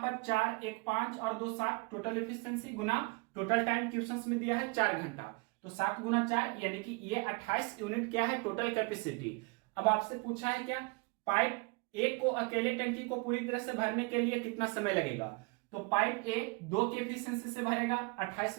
4 1 5 और 2 7 टोटल एफिशिएंसी गुना टोटल टाइम क्वेश्चन में दिया है 4 घंटा। तो 7 गुना 4 यानी कि ये 28 यूनिट क्या है, टोटल कैपेसिटी। अब आपसे पूछा है क्या, पाइप ए को अकेले टंकी को पूरी तरह से भरने के लिए कितना समय लगेगा। तो पाइप ए 2 के एफिशिएंसी से भरेगा 28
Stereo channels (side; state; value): left; quieter; 28.8 dB